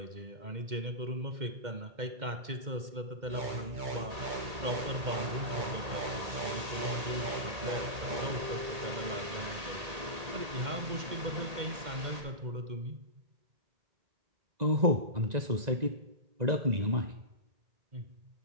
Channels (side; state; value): left; late; 1.8 ms